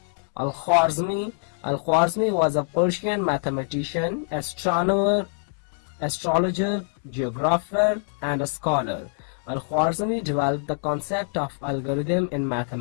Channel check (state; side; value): silent; right; 62 dB below the other